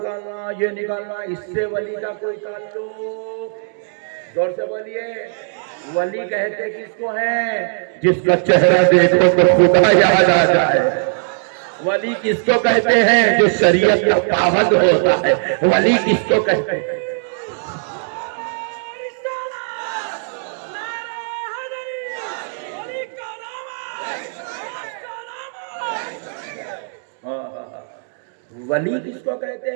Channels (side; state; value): left; silent; digital silence